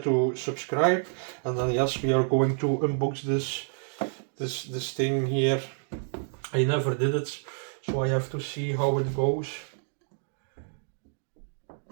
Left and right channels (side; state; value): left; silent; digital silence